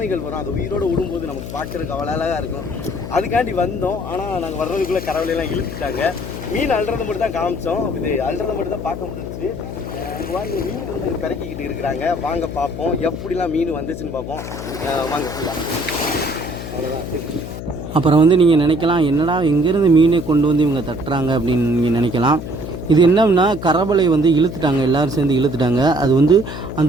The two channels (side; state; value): left; noise; hum, 9 dB below the sound